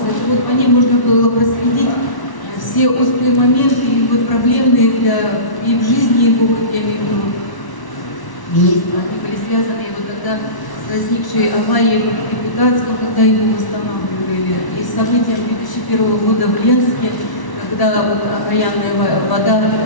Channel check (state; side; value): late; right; 1.1 ms